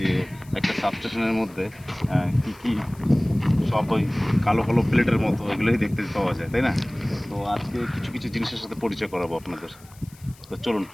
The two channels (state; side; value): noise; left; hiss, 25 dB below the sound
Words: একটা সাবস্টেশনের মধ্যে কি সব ওই কালো কালো প্লেটের মতো এগুলোই দেখতে পাওয়া যায়, তাই না? তো আজকে কিছু কিছু জিনিসের সাথে পরিচয় করাবো আপনাদের, তো চলুন